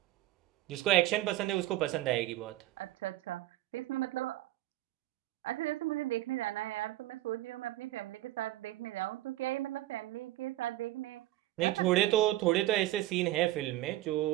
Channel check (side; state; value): left; quieter; 15.7 dB